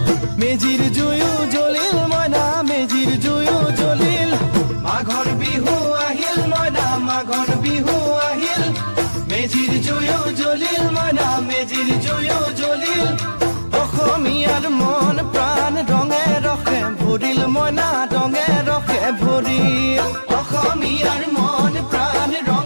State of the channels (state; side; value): inverted; both; correlation -1.00